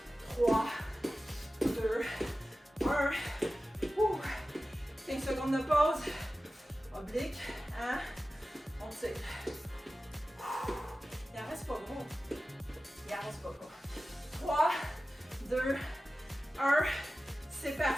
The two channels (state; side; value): normal; both; correlation 0.95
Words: 3, 2, 1. 15 secondes de pause. Oblique, hein? On tire. Il en reste pas gros. Il en reste pas gros. 3, 2, 1. C'est